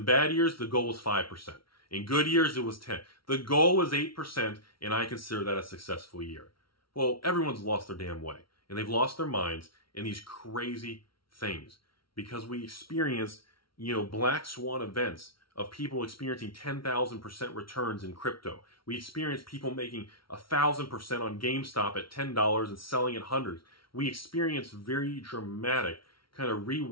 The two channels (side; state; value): right; late; 0.74 ms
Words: bad years, the goal was 5%. In good years, it was 10%. The goal was 8%, and I consider that a successful year. Well, everyone's lost their damn way. And they've lost their minds in these crazy things. because we experienced, you know, black swan events of people experiencing 10,000% returns in crypto. We experienced people making 1,000% on GameStop at $10 and selling at hundreds. We experienced very dramatic kind of